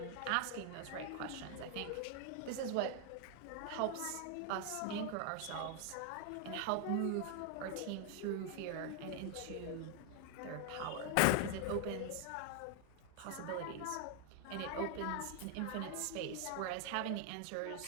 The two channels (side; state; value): both; different; correlation 0.00